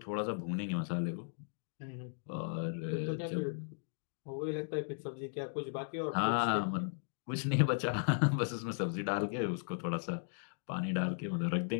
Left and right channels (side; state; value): right; silent; digital silence